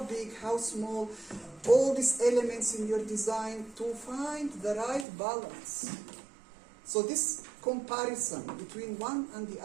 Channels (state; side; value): drops out; left; at 5.1 s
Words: small, all these elements in your design to find the right balance. So this comparison between one and the